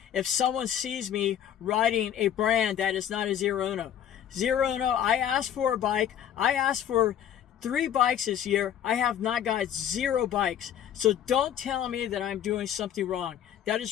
if someone sees me riding a brand that is not a Zero Uno. Zero Uno, I asked for a bike. I asked for 3 bikes this year. I have not got 0 bikes. So don't tell me that I'm doing something wrong. That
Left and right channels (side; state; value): right; quieter; 10.0 dB